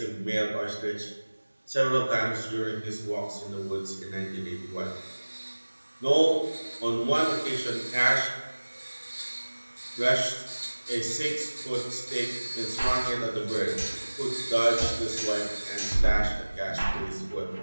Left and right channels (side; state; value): both; inverted; correlation -1.00